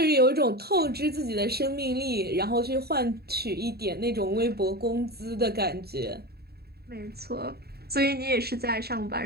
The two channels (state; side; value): late; left; 0.46 ms